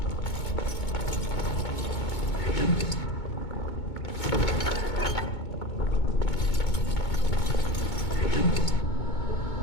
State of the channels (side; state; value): right; late; 2.2 ms